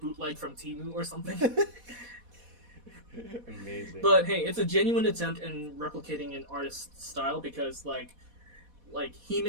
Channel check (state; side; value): late; left; 4.1 ms